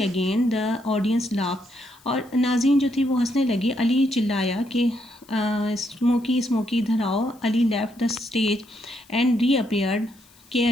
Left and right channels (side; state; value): left; noise; hiss, 28 dB below the sound